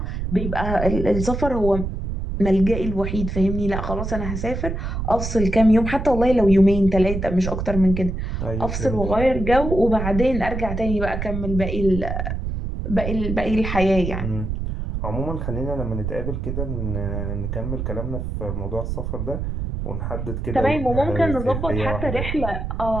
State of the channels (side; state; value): right; noise; rumble, 4 dB below the sound